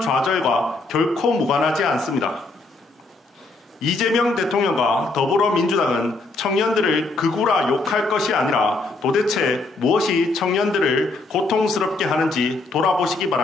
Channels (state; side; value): quieter; right; 3.3 dB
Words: 좌절과 결코 무관하지 않습니다. 이재명 대통령과 더불어민주당은 청년들을 극우라 욕할 것이 아니라 도대체 무엇이 청년들을 고통스럽게 하는지 돌아보시기